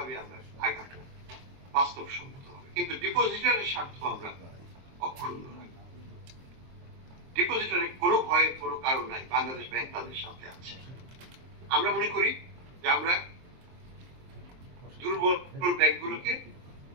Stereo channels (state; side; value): late; left; 23 ms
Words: আমরা আগাবো বাস্তবসম্মত হবে। কিন্তু ডিপোজিটরের স্বার্থ আমরা অক্ষুণ্ণ রাখবো। ডিপোজিটরের কোনো ভয়ের কোনো কারণ নাই, বাংলাদেশ ব্যাংক তাদের সাথে আছে। আমরা মনে করি যে আমরা দুর্বল ব্যাংকগুলোকে